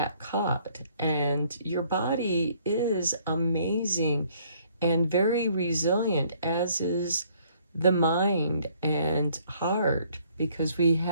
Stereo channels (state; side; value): inverted; both; correlation -0.63